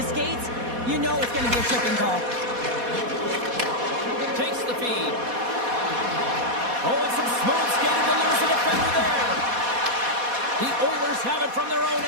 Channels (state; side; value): late; left; 4.1 ms